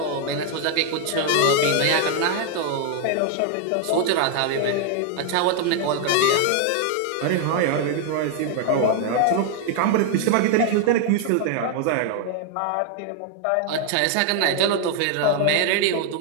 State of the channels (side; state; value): both; different; correlation 0.00